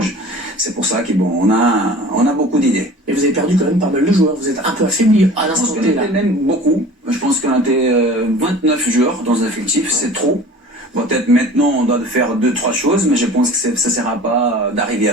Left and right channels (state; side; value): normal; both; correlation 0.42